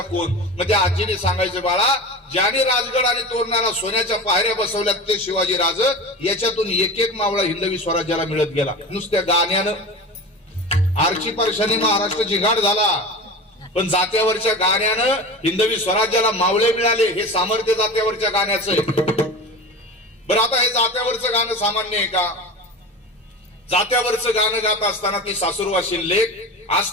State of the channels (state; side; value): normal; both; correlation 0.31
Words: कोण? मग त्या आजीने सांगायचं, बाळा ज्याने राजगड आणि तोरणाला सोन्याच्या पायऱ्या बसवल्यात ते शिवाजी राज. याच्यातून एक एक मावळा हिंदवी स्वराज्याला मिळत गेला नुसत्या गाण्यानं. आरची परशाने महाराष्ट्र जिघाड झाला, पण जात्यावरच्या गाण्यानं हिंदवी स्वराज्याला मावळे मिळाले. हे सामर्थ्य जात्यावरच्या गाण्याचं आहे. बरं, आता हे जात्यावरचं गाणं सामान्य आहे का? जात्यावरचं गाणं गात असताना ती सासूरवाशील लेक